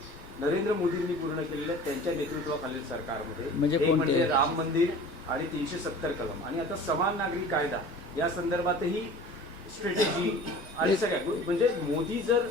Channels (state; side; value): normal; both; correlation 0.42